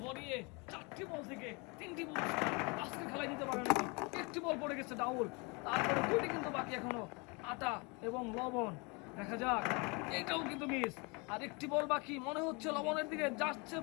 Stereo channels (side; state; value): right; quieter; 30.1 dB